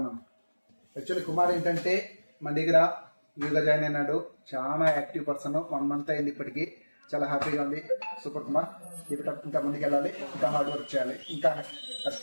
యాక్చువల్లీ కుమార్ ఏంటంటే మన దగ్గర యూగా జాయిన్ అయినాడు. చాలా యాక్టివ్ పర్సన్. 1 month అయింది ఇప్పటికి. చాలా హ్యాపీగా ఉంది. సూపర్ కుమార్. ఇంకా ముందుకు వెళ్ళాలి, ఇంకా హార్డ్ వర్క్ చేయాలి, ఇంకా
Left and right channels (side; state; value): both; inverted; correlation -1.00